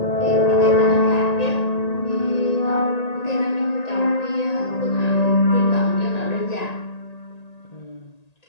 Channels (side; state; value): right; late; 1.8 ms